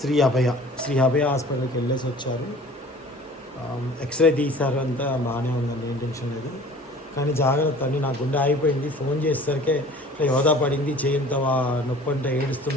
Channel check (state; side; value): normal; both; correlation 0.46